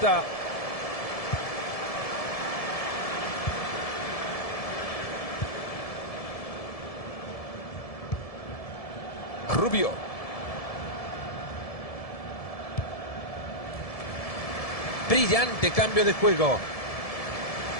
Rubio. Brillante cambio de juego.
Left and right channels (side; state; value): right; late; 1.7 ms